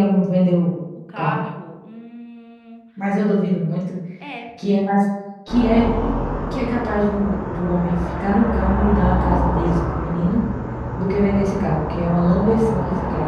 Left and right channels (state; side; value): identical; both; correlation 1.00